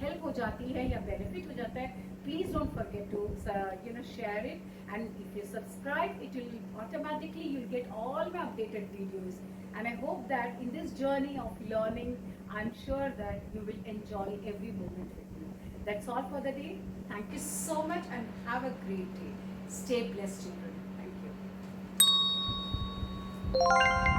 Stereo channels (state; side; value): identical; both; correlation 1.00